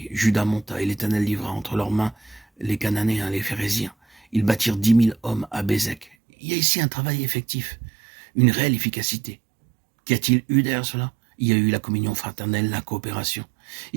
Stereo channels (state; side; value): drops out; left; at 6.1 s